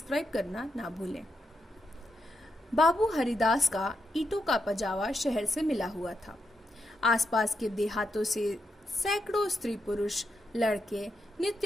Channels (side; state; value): both; normal; correlation 0.84